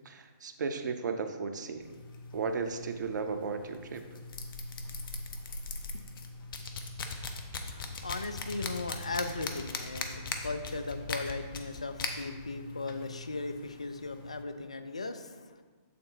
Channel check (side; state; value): both; inverted; correlation -0.55